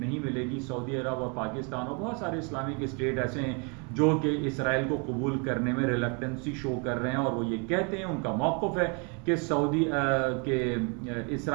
मिलेगी, सऊदी अरब और पाकिस्तान और बहुत सारे इस्लामिक स्टेट ऐसे हैं जो कि इसराइल को कबूल करने में रिलक्टेंसी शो कर रहे हैं, और वो ये कहते हैं, उनका मौक़िफ़ है कि सऊदी के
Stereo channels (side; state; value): left; quieter; 34.6 dB